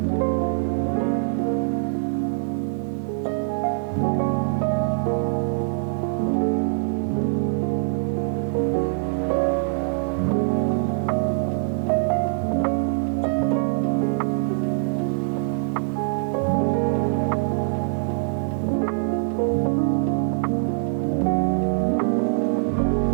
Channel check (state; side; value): silent; left; digital silence